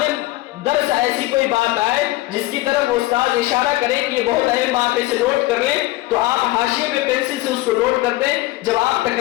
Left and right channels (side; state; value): right; quieter; 18.7 dB